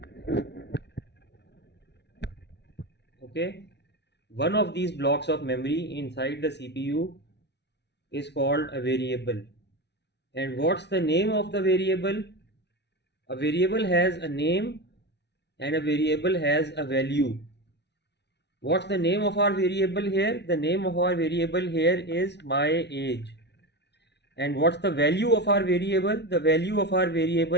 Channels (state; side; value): late; right; 0.50 ms